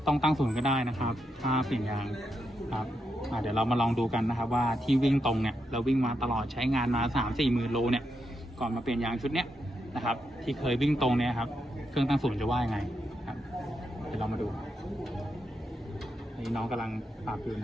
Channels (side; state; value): both; normal; correlation 0.83